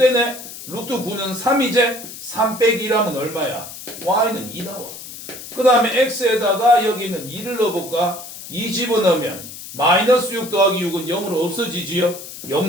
루트 9는 3이제 3 빼기 1하면 얼마야? y는 2 나와. 그 다음에 x에다가 여기는 2를 넣어볼까? 2 집어넣으면 마이너스 6 더하기 6은 0으로 없어지지요?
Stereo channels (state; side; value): noise; left; hiss, 13 dB below the sound